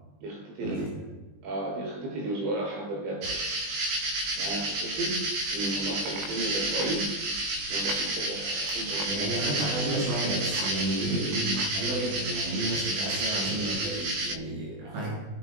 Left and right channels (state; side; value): late; left; 20 ms